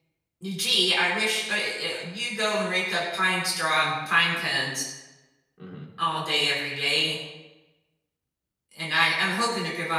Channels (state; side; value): identical; both; correlation 1.00